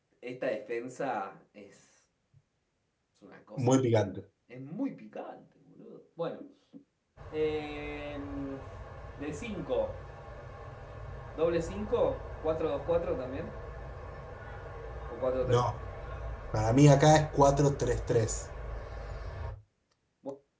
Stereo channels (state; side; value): identical; both; correlation 1.00